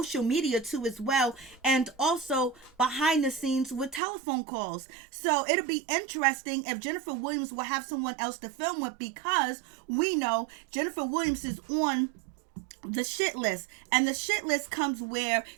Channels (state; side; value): drops out; left; at 4.0 s